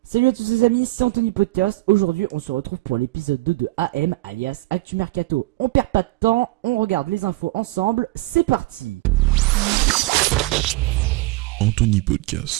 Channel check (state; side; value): quieter; left; 20.5 dB